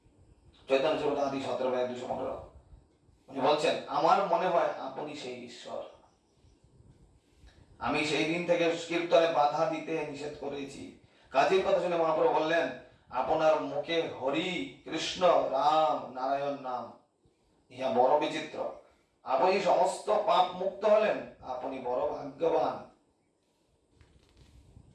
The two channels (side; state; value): both; identical; correlation 1.00